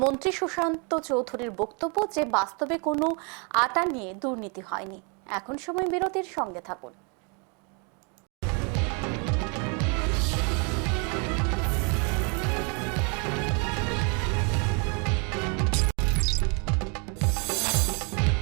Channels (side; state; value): left; quieter; 34.9 dB